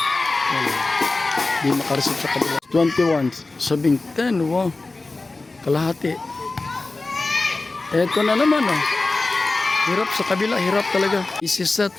Di makareceive sa kabila. 21, sabing 10, wow. Kalahati. Eto na naman, oh. Hirap sa kabila, hirap talaga. Easy set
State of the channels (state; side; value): quieter; right; 3.4 dB